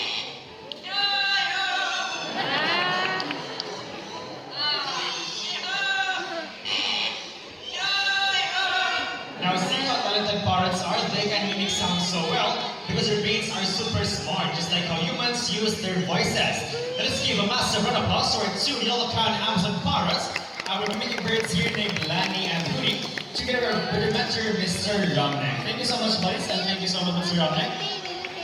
Now, see how talented parrots are? They can mimic sound so well because their brains are super smart, just like how humans use their voices. Let us give a massive round of applause to our two yellow-crowned Amazon parrots, our mimicking birds here named Lani and Rudy, together with their mentor, Mr. Romnek. Thank you so much, buddies, and thank you so much, Mr. Romnek.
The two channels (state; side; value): identical; both; correlation 1.00